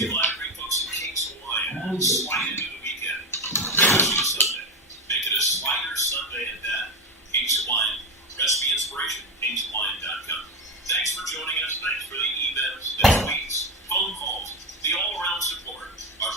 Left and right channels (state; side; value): normal; both; correlation 0.17